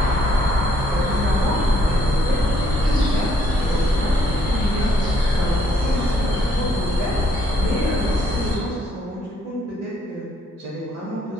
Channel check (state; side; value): normal; both; correlation 0.68